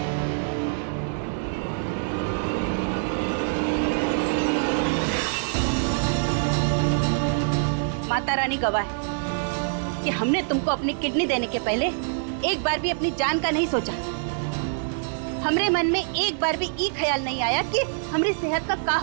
माता रानी गवाह है कि हमने तुमको अपनी किडनी देने के पहले एक बार भी अपनी जान का नहीं सोचा। हमरे मन में एक बार भी ये ख्याल नहीं आया कि हमारी सेहत का क्या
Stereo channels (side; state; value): left; silent; digital silence